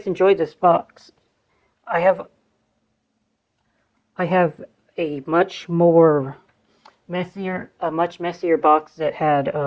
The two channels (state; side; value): identical; both; correlation 1.00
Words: enjoyed this box. I have a much messier box that had